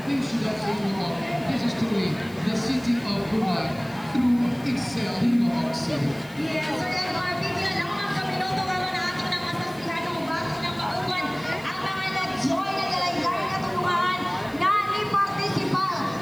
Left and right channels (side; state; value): left; noise; hiss, 23 dB below the sound